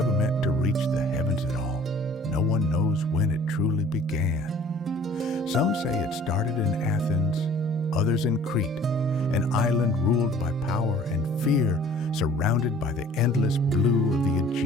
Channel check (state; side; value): normal; both; correlation 0.52